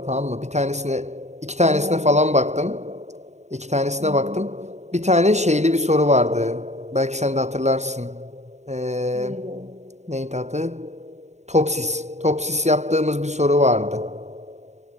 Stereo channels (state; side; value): late; left; 0.33 ms